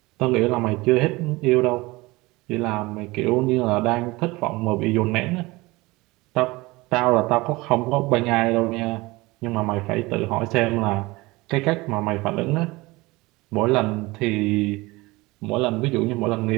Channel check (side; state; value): left; quieter; 22.0 dB